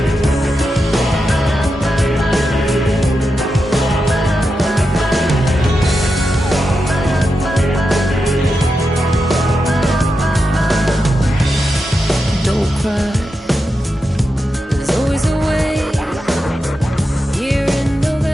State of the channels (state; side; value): normal; both; correlation 0.88